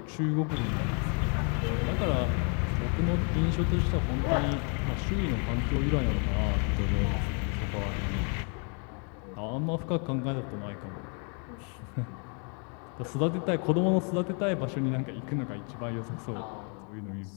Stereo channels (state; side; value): quieter; right; 38.5 dB